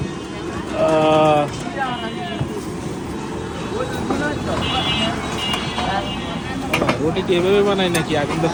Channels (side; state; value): both; identical; correlation 1.00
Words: রুটি কি এভাবে বানাই নাকি আগুনটা